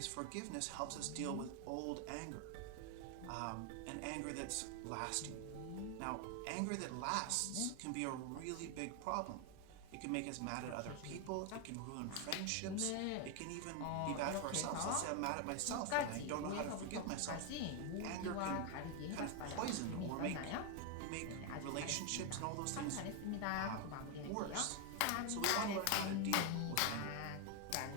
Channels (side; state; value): both; different; correlation 0.01